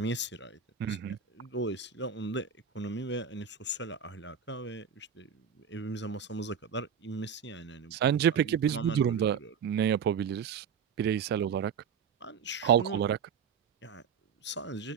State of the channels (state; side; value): quieter; left; 7.0 dB